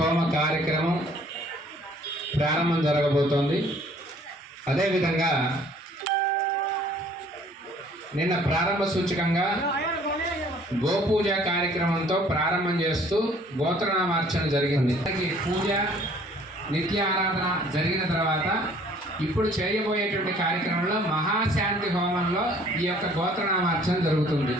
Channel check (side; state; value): both; normal; correlation 0.57